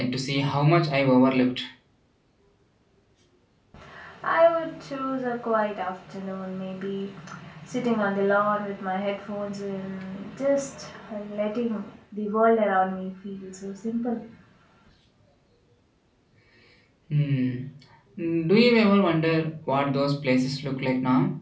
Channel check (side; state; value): both; identical; correlation 1.00